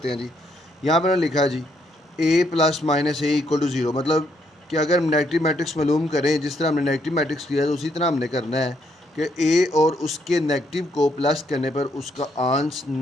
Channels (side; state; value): both; normal; correlation 0.73